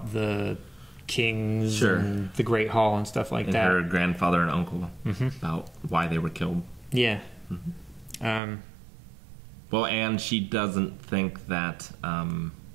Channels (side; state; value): left; drops out; at 8.4 s